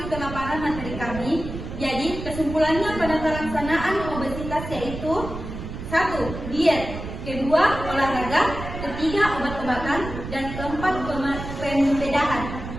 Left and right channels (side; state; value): right; noise; rumble, 8 dB below the sound